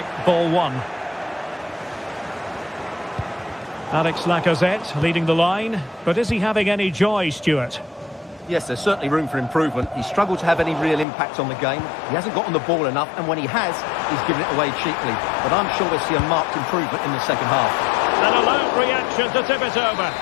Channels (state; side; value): drops out; right; at 11.1 s